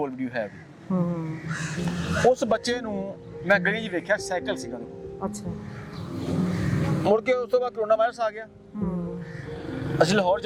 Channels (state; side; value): identical; both; correlation 1.00